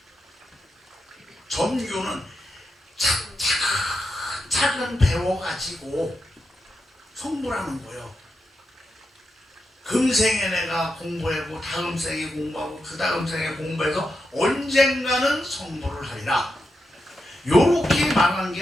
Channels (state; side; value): normal; both; correlation 0.87